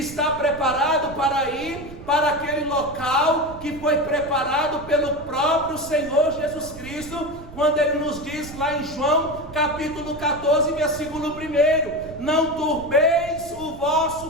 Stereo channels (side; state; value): right; noise; rumble, 16 dB below the sound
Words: preparado para ir para aquele local que foi preparado pelo próprio Senhor Jesus Cristo, quando ele nos diz lá em João capítulo 14, versículo 1: não turbeis o